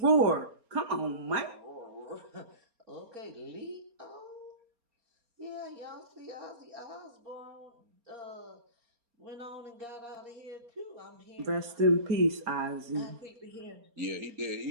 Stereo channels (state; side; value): late; left; 4.3 ms